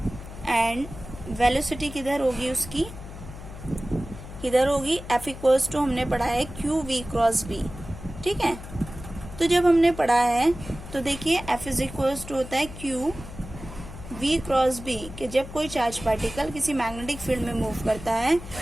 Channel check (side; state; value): left; noise; hum, 13 dB below the sound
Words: and velocity किधर होगी उसकी, किधर होगी एफ इक्वल्स टू हमने पढ़ा है क्यू वी क्रॉस बी. ठीक है, तो जब हमने पढ़ा है तो देखिए एफ इज इक्वल्स टू होता है क्यू वी क्रॉस बी, कि जब कोई चार्ज पार्टिकल किसी मैग्नेटिक फील्ड में मूव करता है